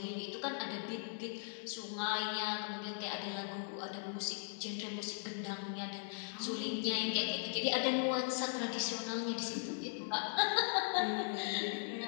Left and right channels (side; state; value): right; silent; digital silence